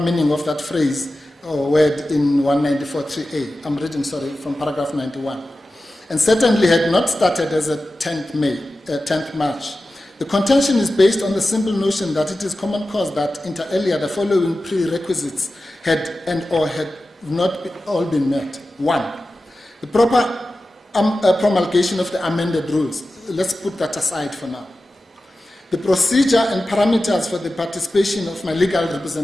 of that phrase or word in 194.3a. I'm reading, from paragraph 91. And certainly had not started as a 10th March. The contention is based on the simple notion that it is common cause that inter alia the following prerequisites had not all been met. 1. The proper promulgation of the amended rules. Let's put that aside for now. The procedure and parameters for the participation of my legal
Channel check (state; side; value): normal; both; correlation 0.94